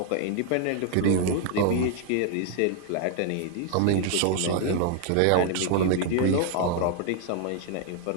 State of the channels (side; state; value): both; different; correlation 0.00